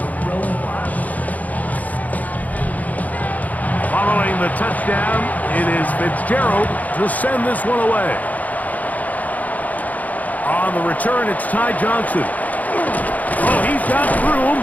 Following the touchdown, it is Fitzgerald to send this one away. On the return, it's Ty Johnson. Oh, he's got room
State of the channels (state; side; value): late; right; 0.077 ms